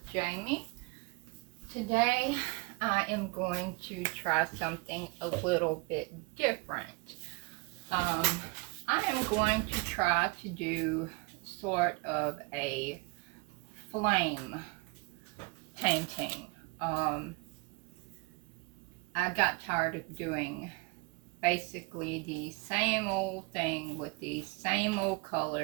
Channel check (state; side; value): quieter; left; 28.3 dB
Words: Jamie. Today I am going to try something a little bit different. Um, I am going to try to do sort of a flame painting. Um, I got tired of doing basically the same old thing with the same old